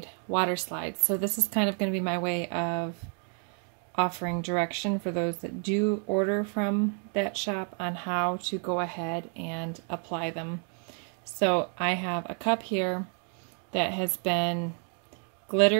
water slides. So this is kind of going to be my way of offering direction for those that do order from that shop on how to go ahead and apply them. So I have a cup here that has been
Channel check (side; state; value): left; quieter; 39.7 dB